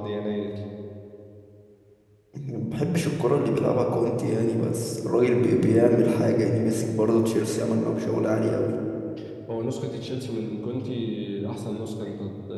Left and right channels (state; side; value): identical; both; correlation 1.00